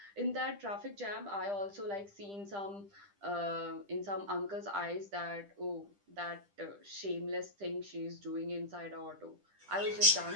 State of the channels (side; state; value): left; late; 10 ms